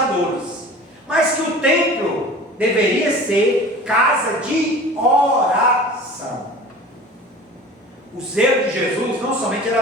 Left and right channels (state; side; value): normal; both; correlation 0.40